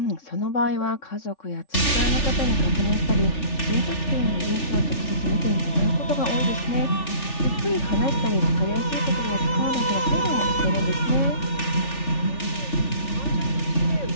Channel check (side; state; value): right; late; 3.4 ms